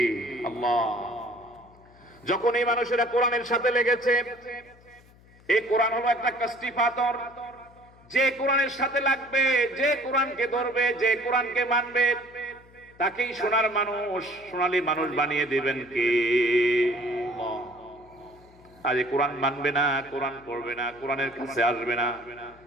আল্লাহ। যখন এই মানুষেরা কোরআনের সাথে লেগেছে, এই কোরআন হলো একটা কাস্টি পাথর। যে কোরআনের সাথে লাগবে, যে কোরআনকে ধরবে, যে কোরআনকে মানবে, তাকেই সোনার মানুষ, সোনালী মানুষ বানিয়ে দিবেন কে? আল্লাহ। আজ কোরআন মানবে না, কোরআন পড়বে না, কোরআনের কাছে আসবে না,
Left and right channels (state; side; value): noise; left; hum, 26 dB below the sound